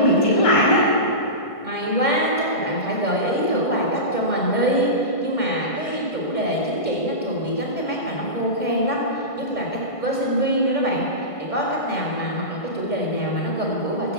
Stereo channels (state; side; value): late; right; 1.5 ms